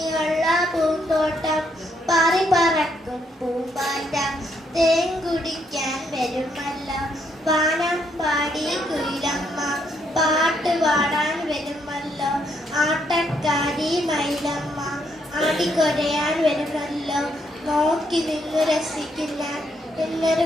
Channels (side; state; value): both; normal; correlation 0.74